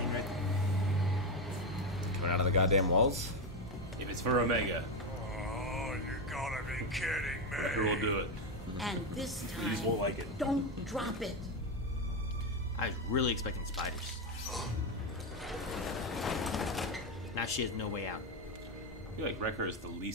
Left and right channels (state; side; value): normal; both; correlation 0.10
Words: right? Coming out of the goddamn walls? If it's for Omega, Oh, you gotta be kidding me. Wrecker will do it. And this He just time, won't like it. don't drop it. I was really expecting spiders. Now she has no way out. I feel like Wrecker is the